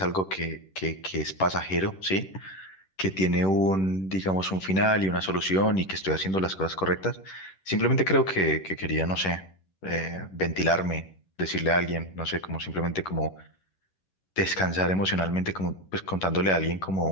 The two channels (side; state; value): right; late; 10 ms